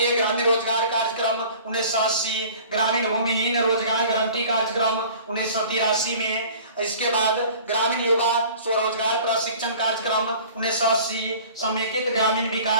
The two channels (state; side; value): inverted; both; correlation -0.45